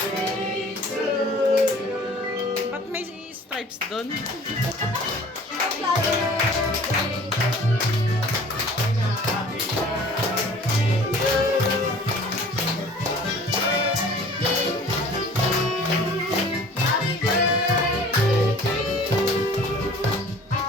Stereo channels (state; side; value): normal; both; correlation 0.48